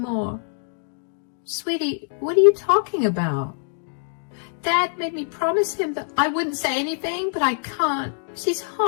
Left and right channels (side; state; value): right; silent; digital silence